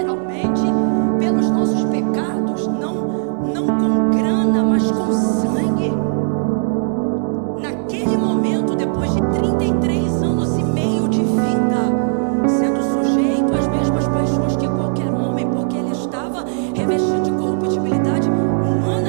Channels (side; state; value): left; silent; digital silence